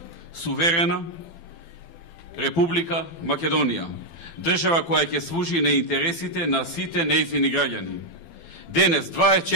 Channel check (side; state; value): right; late; 12 ms